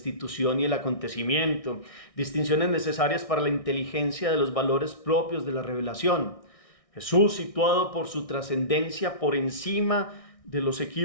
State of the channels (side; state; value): right; late; 1.6 ms